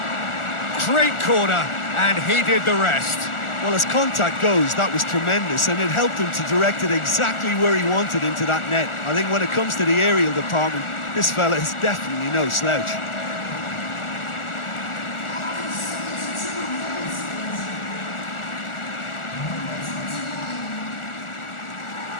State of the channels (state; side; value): late; right; 1.4 ms